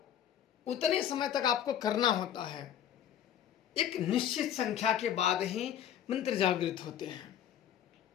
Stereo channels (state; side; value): quieter; right; 10.0 dB